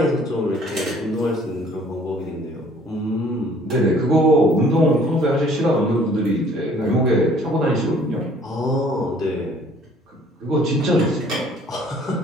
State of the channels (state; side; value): normal; both; correlation 0.56